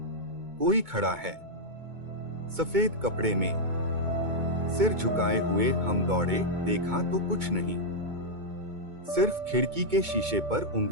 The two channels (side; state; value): left; late; 2.2 ms